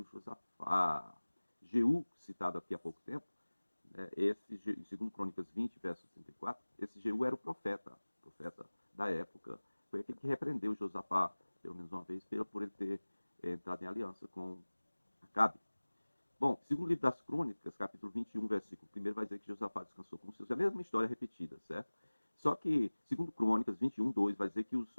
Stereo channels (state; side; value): inverted; both; correlation -1.00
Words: Josafá. Jeú, citado aqui há pouco tempo, em 2 Crônicas 20, verso 34, esse Jeú era o profeta da época. Foi aquele que repreendeu Josafá, pelo menos uma vez, por ele ter entrado em aliança com Acabe. Bom, segundo livro das Crônicas, capítulo 21, versículo 1, vai dizer que Josafá descansou com os seus. É a mesma história repetida, certo? Só que, segundo Crônicas 21, 2, vai dizer que